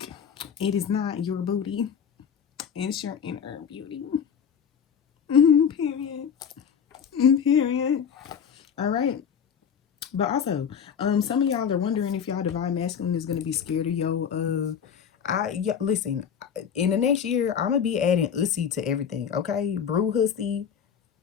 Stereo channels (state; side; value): quieter; right; 7.6 dB